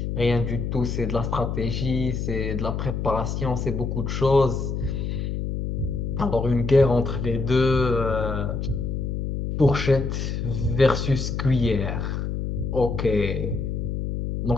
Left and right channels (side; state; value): left; noise; hum, 2 dB below the sound